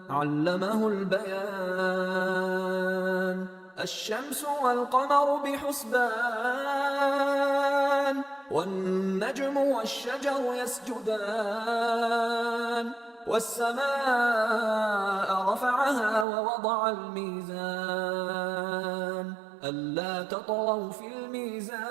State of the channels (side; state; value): left; drops out; at 16.2 s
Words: علمه البيان الشمس والقمر بحسبان والنجم والشجر يسجدان والسماء رفعها ووضع الميزان ألا تطغوا في الميزان